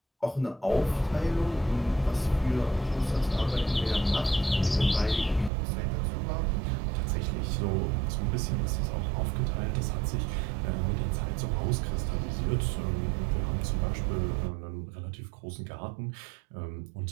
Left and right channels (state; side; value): drops out; left; at 5.5 s